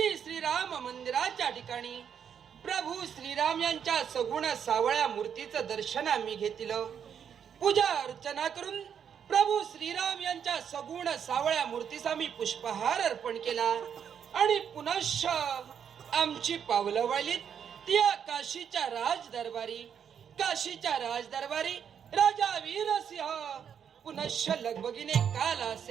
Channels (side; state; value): left; quieter; 8.0 dB